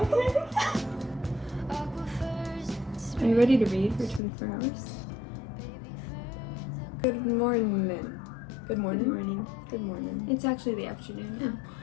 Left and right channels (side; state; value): right; drops out; at 4.2 s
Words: Are you ready to read for 24 hours? Good morning. Good morning? Good morning. Good morning. It's actually the afternoon now.